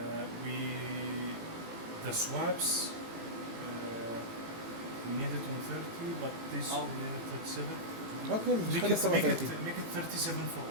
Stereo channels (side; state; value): left; late; 18 ms